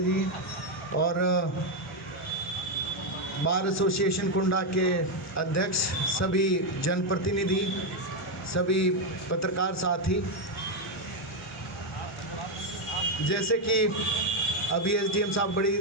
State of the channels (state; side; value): normal; both; correlation 0.04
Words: जी और बार एसोसिएशन कुंडा के अध्यक्ष, सभी जनप्रतिनिधि, सभी पत्रकार साथी, जैसे कि अभी एसडीएम साहब बड़ी